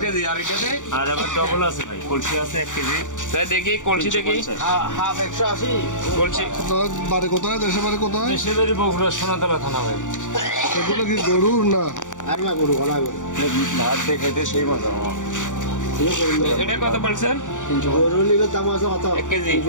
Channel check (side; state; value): right; late; 0.86 ms